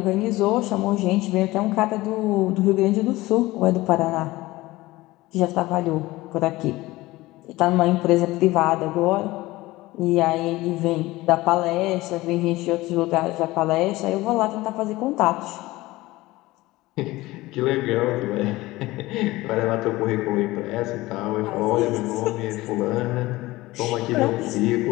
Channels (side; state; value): right; quieter; 19.1 dB